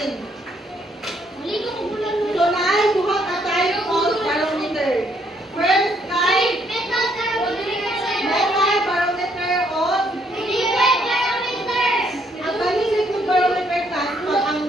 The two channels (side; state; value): both; normal; correlation 0.69